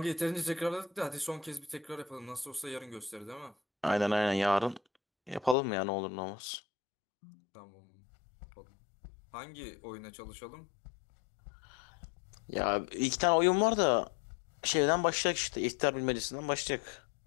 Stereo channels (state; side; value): drops out; right; at 5.6 s